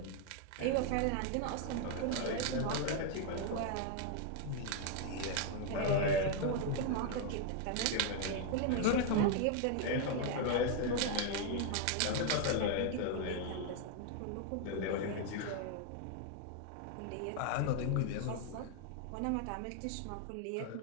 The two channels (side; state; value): both; different; correlation 0.00